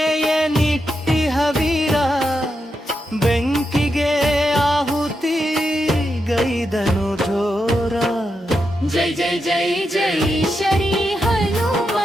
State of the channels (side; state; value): both; normal; correlation 0.85